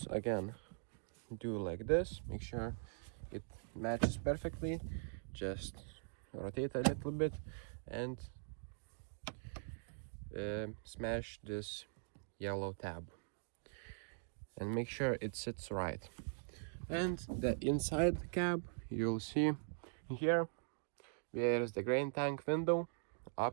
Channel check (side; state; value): left; silent; digital silence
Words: again, do like this. Make sure it matches perfectly. Just rotate a little bit and smash this yellow tab and make sure it sits right. And the inside cab, you'll see here there is the grain tank window